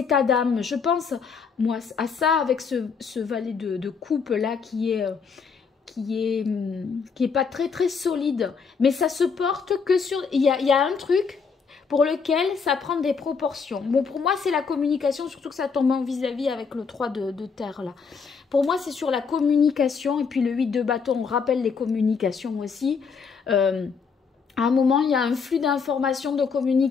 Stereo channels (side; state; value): right; quieter; 5.6 dB